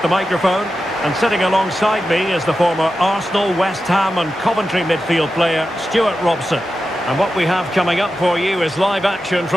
the microphone, and sitting alongside me is the former Arsenal, West Ham and Coventry midfield player Stuart Robson. And what we have coming up for you is live action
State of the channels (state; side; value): normal; both; correlation 0.91